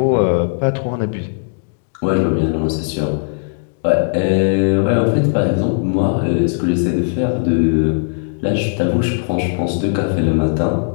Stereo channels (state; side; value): silent; right; digital silence